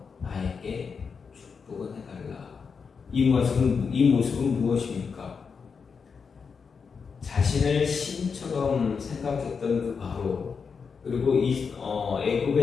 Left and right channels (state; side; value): quieter; right; 5.7 dB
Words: 나에게 축복은 해달라. 이 모습은 무엇입니까? 자신을 신처럼 생각했던 그 바로, 그리고